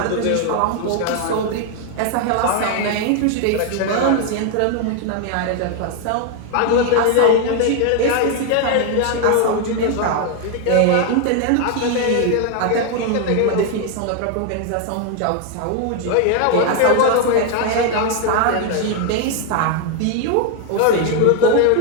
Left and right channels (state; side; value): different; both; correlation 0.00